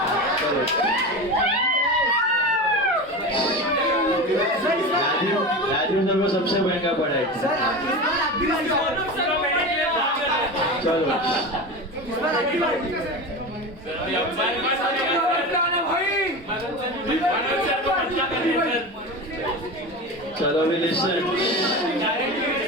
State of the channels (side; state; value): both; normal; correlation 0.26